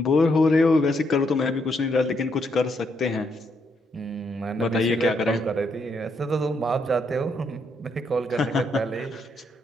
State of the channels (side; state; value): both; normal; correlation 0.76